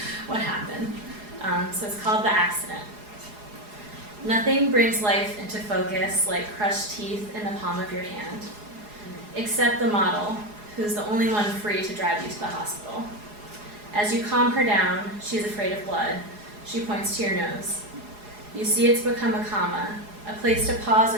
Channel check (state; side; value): late; left; 4.8 ms